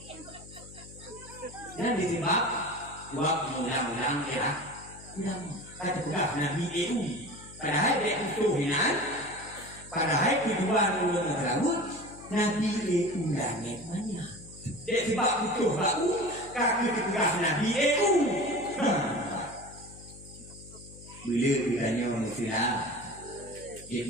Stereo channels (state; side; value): noise; left; hum, 18 dB below the sound